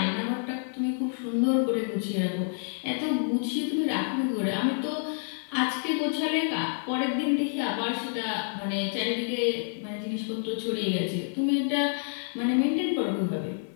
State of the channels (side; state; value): right; silent; digital silence